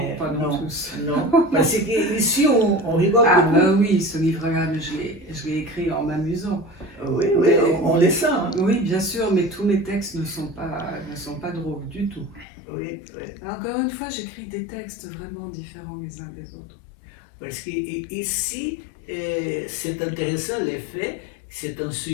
pas dans tous. Non, parce qu'ici on rigole beaucoup. Ben oui, ce livre-là, je l'ai écrit en m'amusant. Oui, on les sent. Hein. Oui, bien sûr, mais tous mes textes ne sont pas drôles du tout. Oui. Encore une fois, j'écris des textes vraiment différents les uns des autres. Parce qu'ici, c'est intéressant le fait que c'est un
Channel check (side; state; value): right; drops out; at 12.5 s